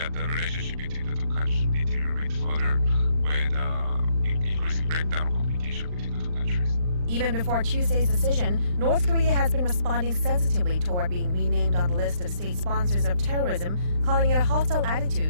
the relationship between the two countries will deteriorate further with increasing breakdown of communication between the two countries. Even before Tuesday's decision, North Korea has been responding sensitively toward being renamed on the list of state sponsors of terrorism, calling it a hostile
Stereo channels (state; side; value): late; left; 39 ms